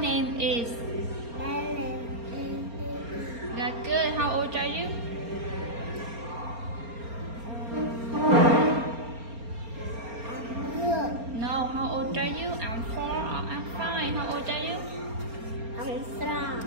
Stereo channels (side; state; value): left; late; 4.3 ms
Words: is. My name is Lily. That's good. How old are you? I'm good. No, how old are you? I'm 4 or I'm 5. How old are you? I'm strong.